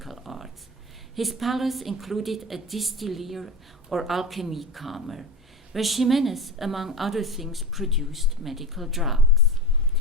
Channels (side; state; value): both; normal; correlation 0.26